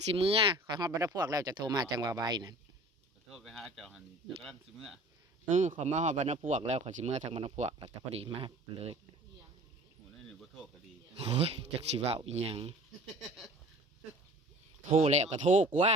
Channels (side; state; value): both; normal; correlation 0.45